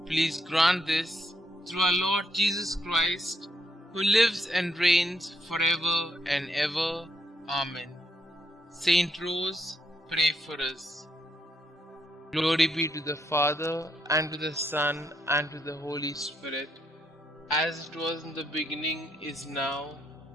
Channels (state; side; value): normal; both; correlation 0.76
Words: Please grant this through our Lord Jesus Christ, who lives and reigns forever and ever. Amen. Saint Rose, pray for us. Glory be to the Father, and to the Son, and to the Holy Spirit, as it was in the beginning, is now,